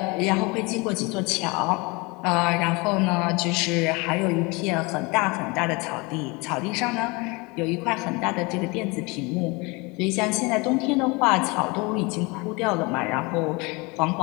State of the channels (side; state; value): right; quieter; 26.8 dB